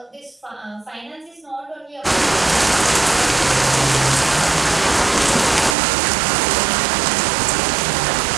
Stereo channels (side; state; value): left; drops out; at 5.8 s